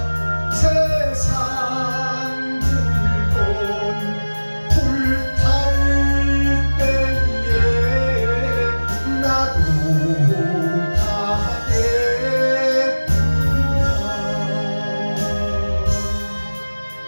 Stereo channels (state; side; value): inverted; both; correlation -1.00